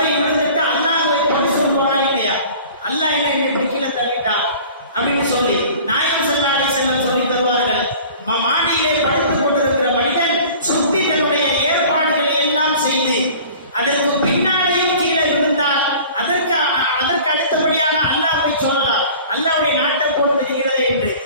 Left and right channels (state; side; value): inverted; both; correlation -0.44